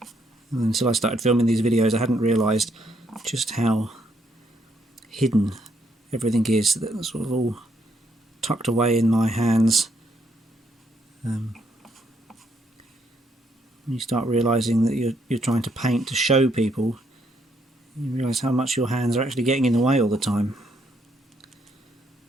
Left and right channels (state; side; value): normal; both; correlation 0.73